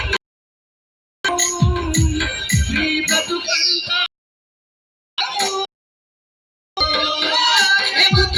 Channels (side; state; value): both; identical; correlation 1.00